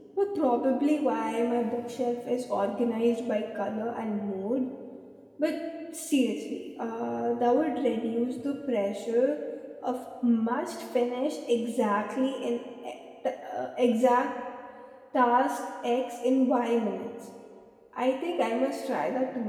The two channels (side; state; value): both; identical; correlation 1.00